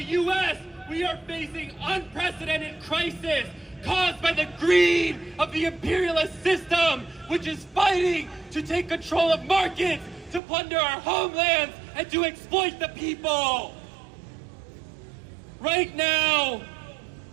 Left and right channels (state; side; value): drops out; left; at 10.4 s